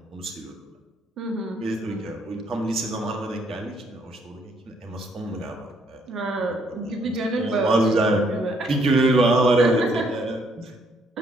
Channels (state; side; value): normal; both; correlation 0.69